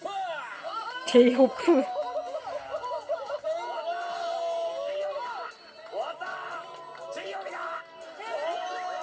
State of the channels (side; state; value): both; identical; correlation 1.00